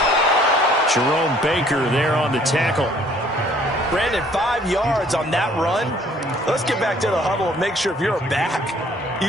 Jerome Baker there on the tackle. Brandon, 5 yards on that run. Let's get back to the huddle and make sure if you're a back,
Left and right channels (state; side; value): normal; both; correlation 0.59